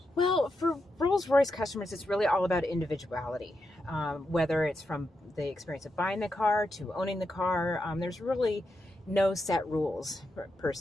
Well, for Rolls-Royce customers, it's really all about individuality. Whether it's from the experience of buying the car to owning the car, there's really no set rules per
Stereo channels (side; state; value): both; normal; correlation 0.86